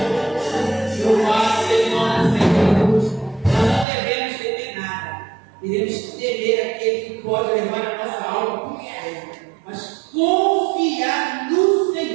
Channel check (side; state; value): left; drops out; at 3.9 s